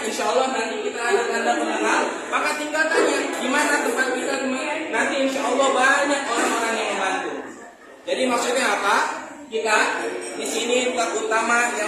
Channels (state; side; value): identical; both; correlation 1.00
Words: insya Allah nanti kita ada tanda pengenal, maka tinggal tanya gimana tempat kita, nanti insya Allah banyak orang-orang yang membantu. Jadi maksudnya apa? Kita di sini terutama